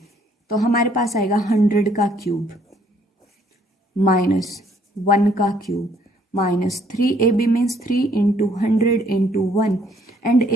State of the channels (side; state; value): both; normal; correlation 0.65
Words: तो हमारे पास आएगा 100 का क्यूब माइनस 1 का cube minus 3ab means 3 into 100 into 1 and